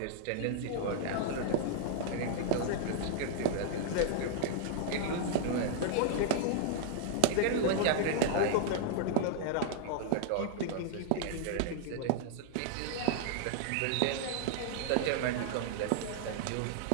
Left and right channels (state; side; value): different; both; correlation -0.01